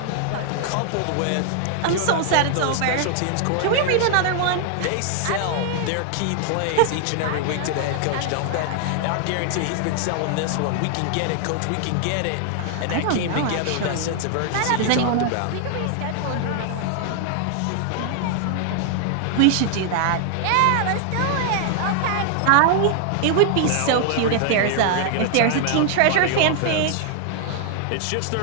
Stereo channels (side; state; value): both; different; correlation 0.00